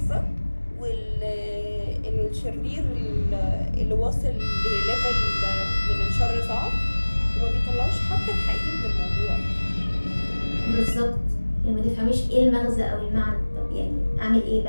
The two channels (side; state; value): both; inverted; correlation -1.00